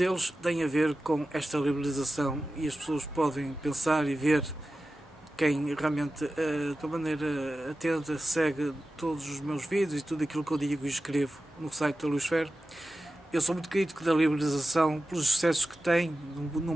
tem a ver com esta liberalização, e as pessoas podem pensar e ver, quem realmente de uma maneira atenta segue todos os meus vídeos e tudo aquilo que eu digo e escrevo no site da Luisfera. Eu sou muito crítico da liberalização pelos excessos que tem, no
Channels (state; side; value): normal; both; correlation 0.94